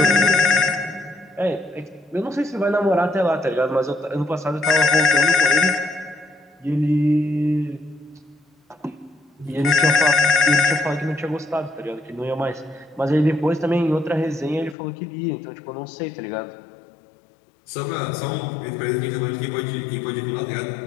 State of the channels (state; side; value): drops out; right; at 14.8 s